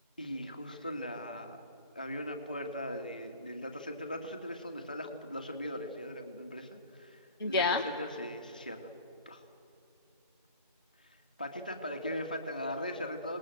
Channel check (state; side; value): inverted; both; correlation -0.42